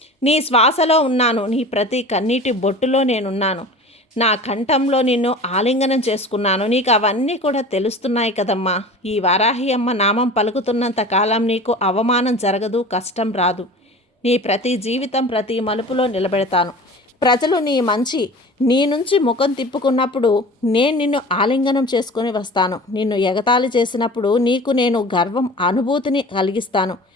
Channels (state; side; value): normal; both; correlation 0.38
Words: నీ శ్వాసలో ఉన్నాను. నీ ప్రతి కన్నీటి బొట్టులో నేనున్నాను. నా కంఠంలో నిన్ను ఆలింగనం చేసుకున్నాను. నీకు అవన్నీ కూడా తెలుస్తున్నాయి కదమ్మా. ఈ వారాహి అమ్మ నామం పలుకుతున్నంత కాలం నీకు అవమానం జరగదు, కష్టం రాదు. నీ ప్రతి జీవితం ప్రతి మలుపులో నిలబెడతాను. ప్రజలు నీ నుంచి ముఖం తిప్పుకున్నప్పుడు నేను నిన్ను ఆలింగనం చేసుకొని వస్తాను. నిన్ను ఎగతాళి చేసినప్పుడు నీకు నేను గర్వం అనుభూతిని కలిగిస్తాను.